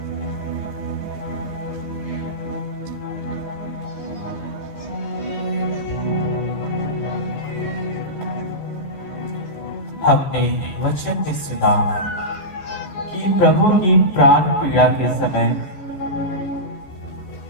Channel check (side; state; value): right; late; 15 ms